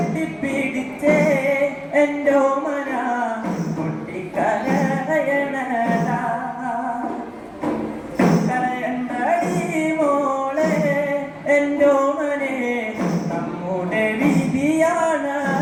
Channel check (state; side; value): identical; both; correlation 1.00